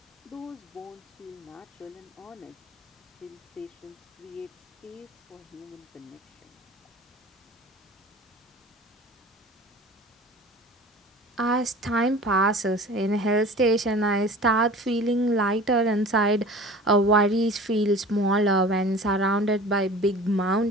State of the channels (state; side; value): normal; both; correlation 0.41